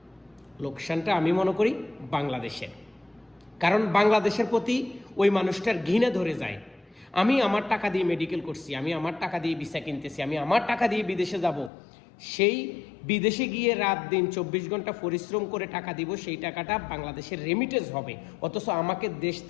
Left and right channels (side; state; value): right; drops out; at 11.7 s